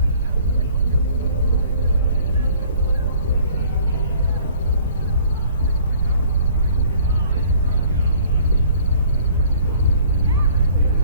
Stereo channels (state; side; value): inverted; both; correlation -0.54